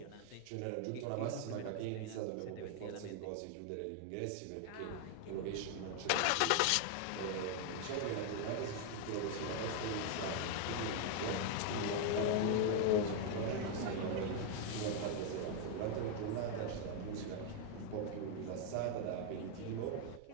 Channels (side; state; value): both; different; correlation 0.00